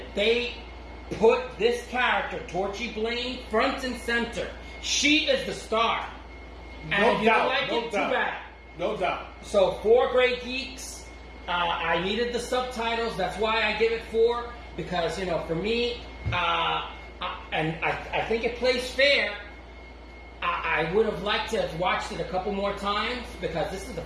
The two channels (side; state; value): both; identical; correlation 1.00